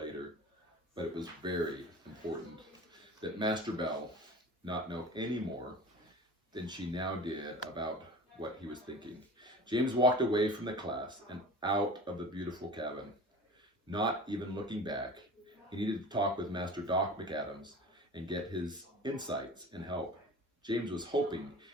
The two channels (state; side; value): normal; both; correlation 0.38